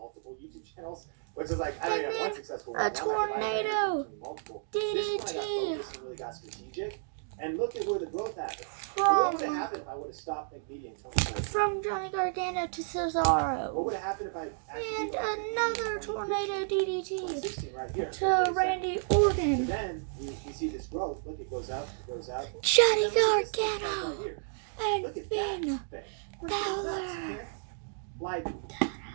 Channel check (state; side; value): silent; left; digital silence